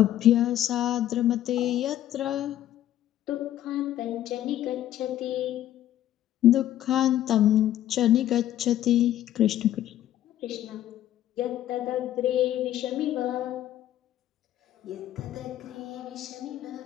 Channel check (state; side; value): quieter; right; 12.5 dB